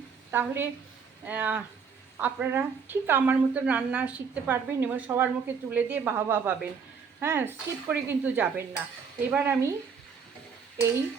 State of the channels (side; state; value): left; quieter; 6.1 dB